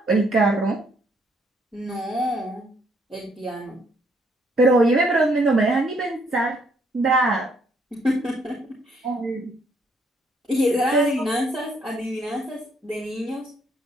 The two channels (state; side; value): normal; both; correlation 0.69